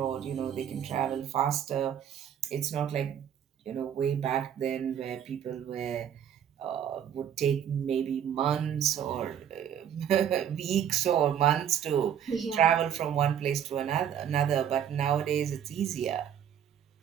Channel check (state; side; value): quieter; left; 9.2 dB